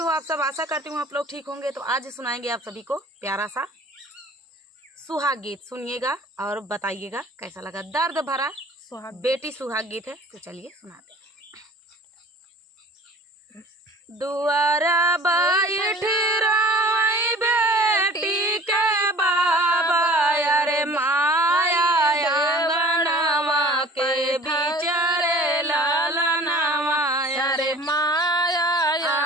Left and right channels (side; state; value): both; normal; correlation 0.46